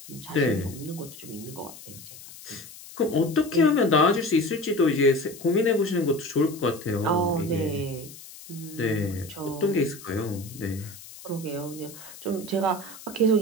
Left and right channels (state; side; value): noise; left; hiss, 17 dB below the sound